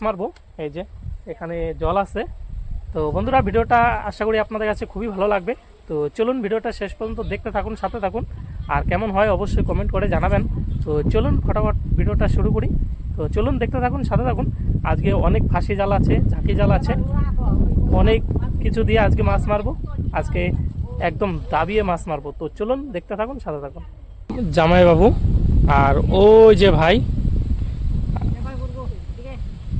মারবো। এই যে এখানে জল আছে। তো বন্ধুরা, ভিডিওটা আশা করি আপনাদের কাছে খুবই ভালো লাগবে। তো চলুন ভিডিওটা শেষ পর্যন্ত দেখতে থাকুন, সাথে থাকুন। আর কেমন হয় অবশ্যই কমেন্ট করে জানাবেন। তো চলুন ফটাফট ভিডিওটা শুরু করি। তো চলুন দেখতে থাকুন, সাথে থাকুন। আজকে অনেক ফাঁসি জাল আছে, ঝাঁকি জাল আছে, অনেক কিছু দিয়ে আজকে মাছ মারবো। আজকে একদম দাবিয়ে মাছ মারবো। তো চলুন দেখতে থাকুন, সাথে থাকুন। জামাইবাবু আর ওই যে ভাই,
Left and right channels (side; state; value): both; identical; correlation 1.00